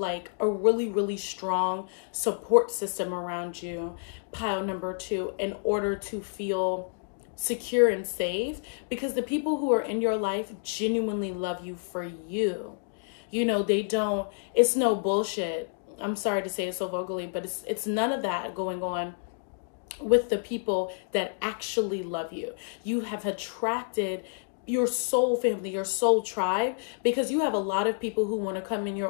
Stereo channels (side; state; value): right; silent; digital silence